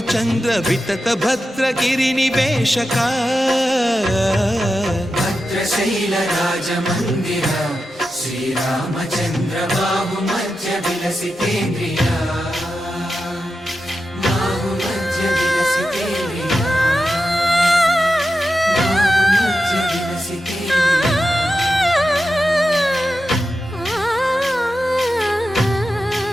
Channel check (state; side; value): normal; both; correlation 0.90